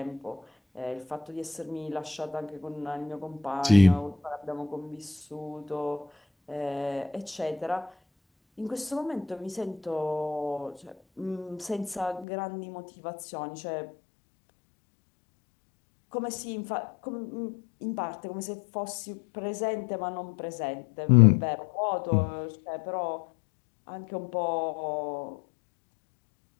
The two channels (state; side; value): drops out; right; at 12.2 s